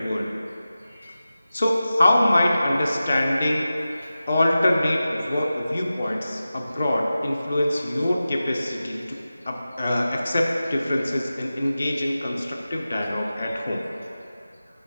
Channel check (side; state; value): both; inverted; correlation -0.94